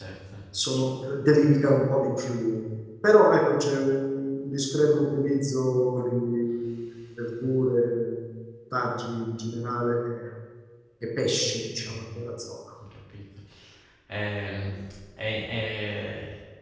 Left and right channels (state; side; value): identical; both; correlation 1.00